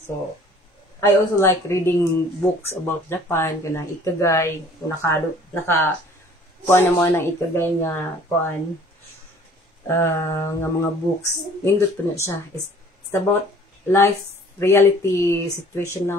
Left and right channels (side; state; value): both; normal; correlation 0.53